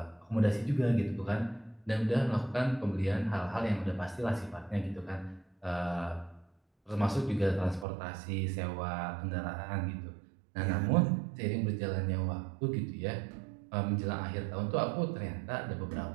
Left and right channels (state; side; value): drops out; left; at 7.9 s